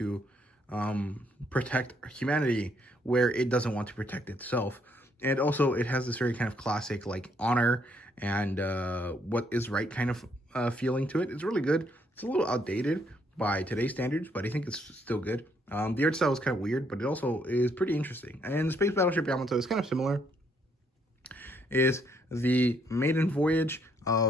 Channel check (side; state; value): both; normal; correlation 0.71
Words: protect humanity where it doesn't want to protect itself. And also, it has this very kind of classic, like, honor and what is right kind of feeling to it. It's really good. It's a little outdated by today's standards, but I think it's still good. The art style is kind of weird, but it also is pretty interesting. And the Space Battleship Yamato is kind of similar. Is the maiden voyage